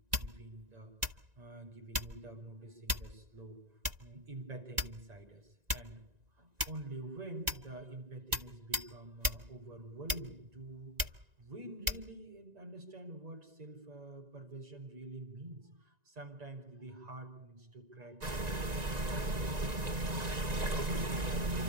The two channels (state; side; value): late; left; 1.9 ms